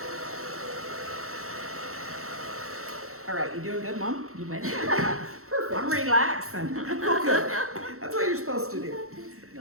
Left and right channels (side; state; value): left; late; 0.63 ms